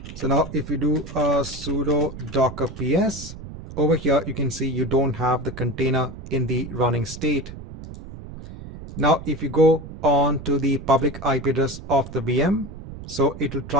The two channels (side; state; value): right; noise; rumble, 13 dB below the sound